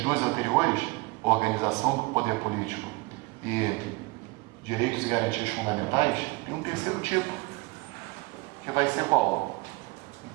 2 anteriores, organização do poder político e direitos e garantias fundamentais, tem um terceiro tipo, que vai ser qual?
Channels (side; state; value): left; quieter; 24.7 dB